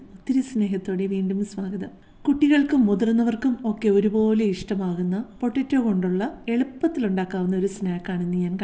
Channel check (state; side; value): identical; both; correlation 1.00